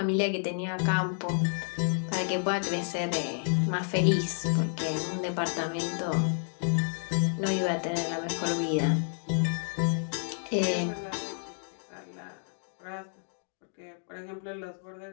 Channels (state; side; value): silent; right; 58 dB below the other